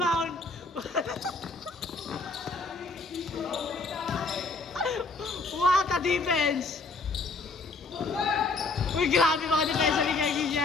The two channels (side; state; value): right; quieter; 3.7 dB